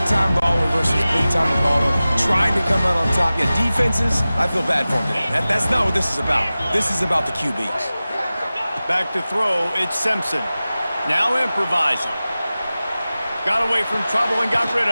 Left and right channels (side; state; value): both; inverted; correlation -0.96